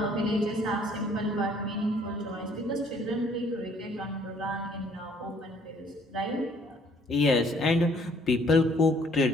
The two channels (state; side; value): normal; both; correlation 0.61